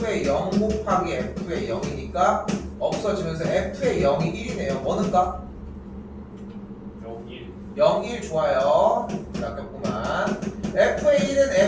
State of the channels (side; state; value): both; identical; correlation 1.00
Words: 0 곱하기 F의 0이니까 없어지면서 F의 0이 1이네요. 뭐 넣을까? 0, 1 좋아요. 아깝구만. F의 1은